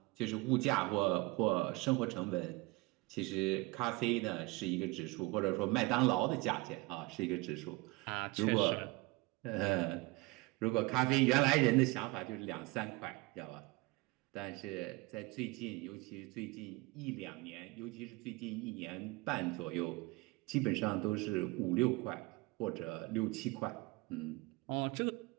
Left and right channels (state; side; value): quieter; left; 23.2 dB